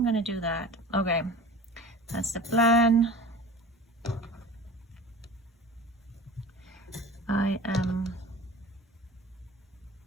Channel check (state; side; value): normal; both; correlation 0.39